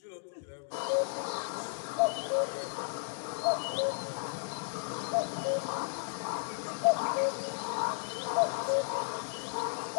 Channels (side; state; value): right; silent; digital silence